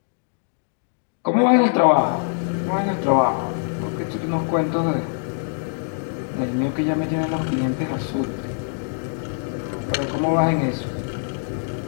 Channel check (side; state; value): right; silent; digital silence